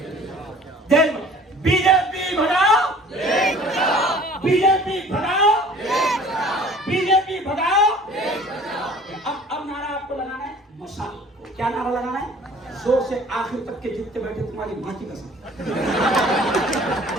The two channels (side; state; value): both; normal; correlation 0.49